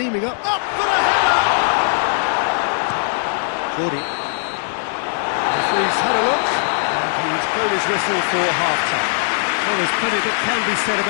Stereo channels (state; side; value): silent; right; 66 dB below the other